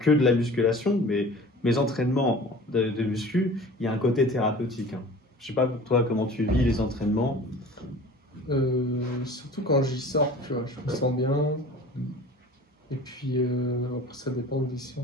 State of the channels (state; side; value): normal; both; correlation 0.42